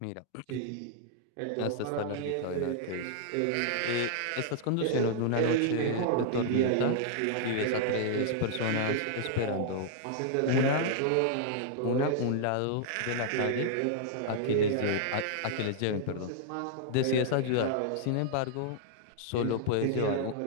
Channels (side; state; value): both; different; correlation -0.01